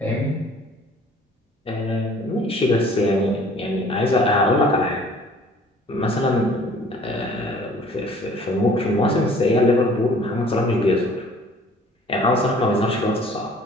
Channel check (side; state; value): both; normal; correlation 0.53